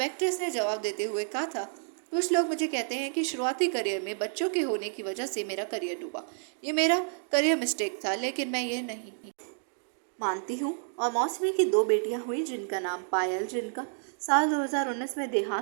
एक्ट्रेस ने जवाब देते हुए कहा था, कुछ लोग मुझे कहते हैं कि शुरुआती करियर में बच्चों के होने की वजह से मेरा करियर डूबा। ये मेरा करियर मिस्टेक था, लेकिन मैं ये नहीं मानती हूँ। और मौसमी की 2 बेटियां हुई जिनका नाम पायल, जिनका साल 2019 में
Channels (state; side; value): silent; left; digital silence